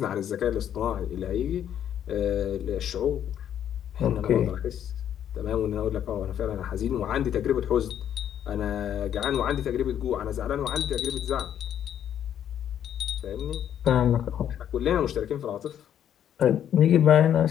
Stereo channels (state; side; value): quieter; right; 9.9 dB